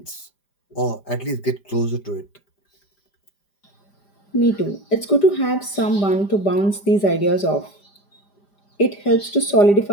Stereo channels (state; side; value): late; right; 5.0 ms